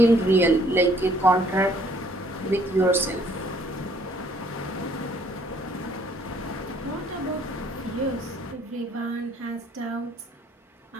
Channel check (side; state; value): both; normal; correlation 0.62